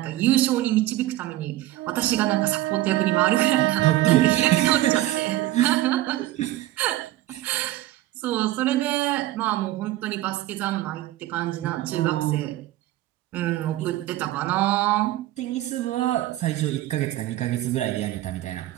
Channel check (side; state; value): left; quieter; 15.6 dB